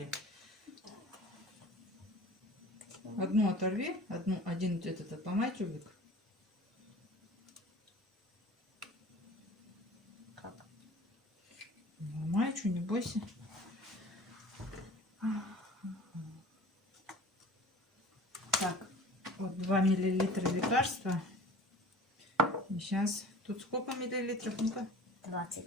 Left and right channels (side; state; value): both; normal; correlation 0.43